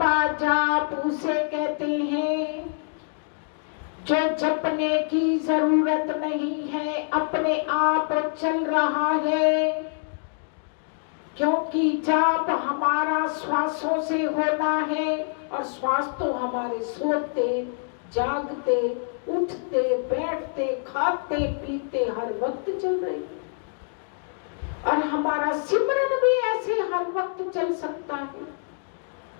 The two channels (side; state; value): right; silent; digital silence